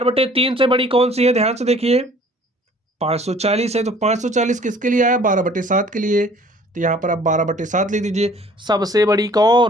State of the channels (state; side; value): normal; both; correlation 0.53